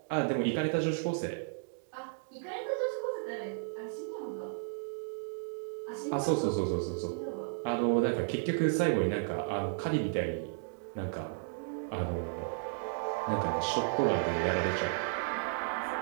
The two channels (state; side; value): silent; left; digital silence